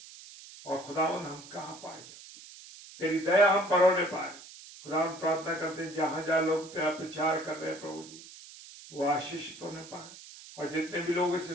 और खुदावन हम कहाँ पाए जाते हैं, तेरी दया हम पर होने पाए। खुदा हम प्रार्थना करते हैं, जहां जहां लोग तेरा प्रचार कर रहे हैं प्रभु जी, वो आशीषित होने पाए। और जितने भी लोग इसे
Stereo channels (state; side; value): noise; right; hiss, 17 dB below the sound